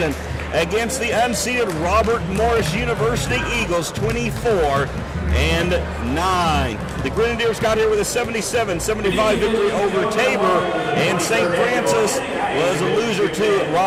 against the unseeded Robert Morris University Eagles, 24-9. The Grenadiers got here with a 77-75 victory over Tabor, and St. Francis was a loser to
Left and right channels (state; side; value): identical; both; correlation 1.00